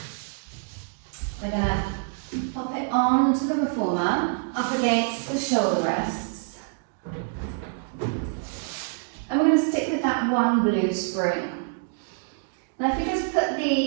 we're going to pop it onto the reformer, up against the shoulder rests. And we're going to stick with that one blue spring. Now if you just put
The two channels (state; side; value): silent; left; 61 dB below the other